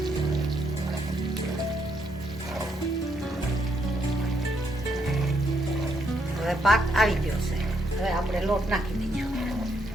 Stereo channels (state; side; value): normal; both; correlation 0.76